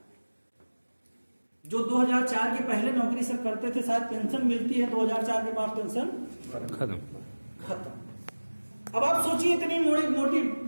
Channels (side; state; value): both; inverted; correlation -1.00